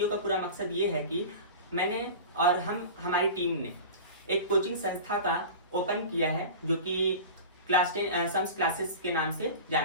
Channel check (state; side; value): inverted; both; correlation -0.33